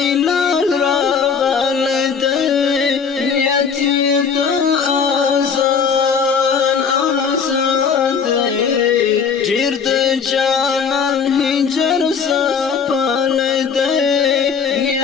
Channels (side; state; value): right; quieter; 6.2 dB